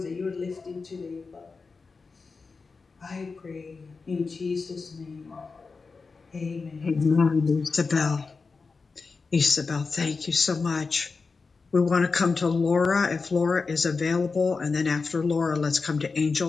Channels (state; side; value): quieter; right; 4.5 dB